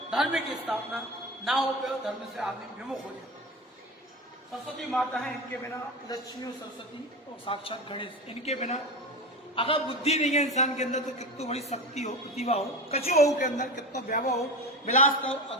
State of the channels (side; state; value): both; normal; correlation 0.26